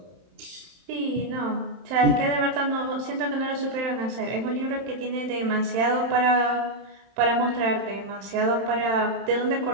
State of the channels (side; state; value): left; late; 31 ms